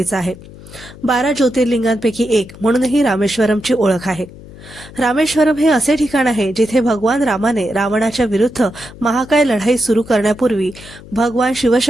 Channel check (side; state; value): left; noise; hum, 18 dB below the sound